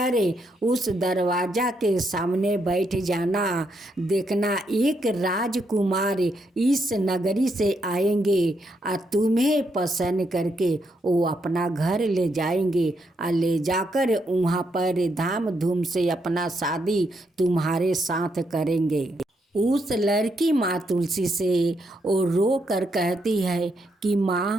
उस दरवाजा के सामने बैठ जाना, देखना एक राजकुमार इस नगरी से आएंगे और तुम्हें पसंद करके वो अपना घर ले जाएंगे और ले जाकर वहाँ पर धाम धूम से अपना शादी तुम्हारे साथ करेंगे। उस लड़की माँ तुलसी से वो रो कर कहती है कि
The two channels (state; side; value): normal; both; correlation 0.78